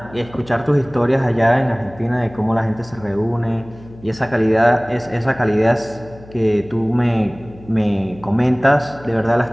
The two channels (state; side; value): noise; left; hum, 20 dB below the sound